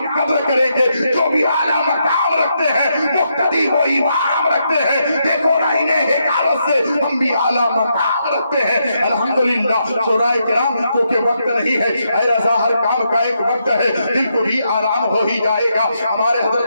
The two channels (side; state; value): both; inverted; correlation -0.80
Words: قدر کریں گے۔ جو بھی اعلیٰ مقام رکھتے ہیں، مقتدی و امام رکھتے ہیں، دیکھو نا انہیں حکارت سے ہم بھی اعلیٰ مقام رکھتے ہیں الحمدللہ۔ شورائے کرام کیونکہ وقت نہیں ہے، اے رضا ہر کام کا ایک وقت ہے، دل کو بھی آرام ہو ہی جائے گا۔ ہمارے